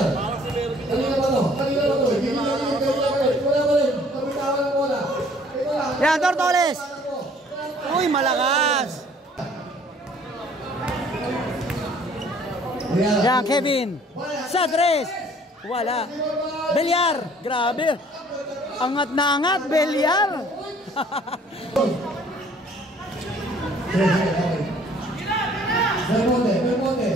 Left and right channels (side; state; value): both; normal; correlation 0.56